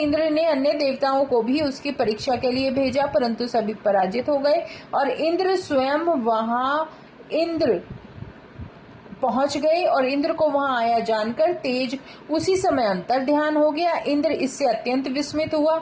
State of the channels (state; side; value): identical; both; correlation 1.00